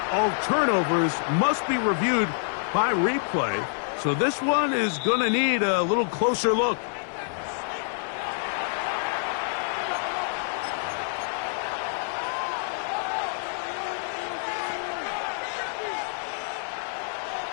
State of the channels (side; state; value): right; silent; 56 dB below the other